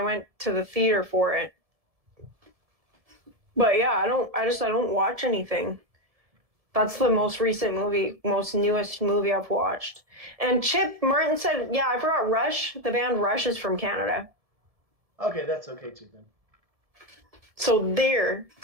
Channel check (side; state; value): left; late; 1.7 ms